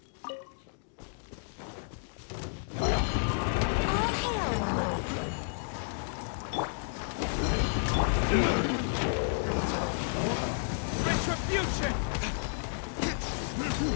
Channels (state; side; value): silent; right; digital silence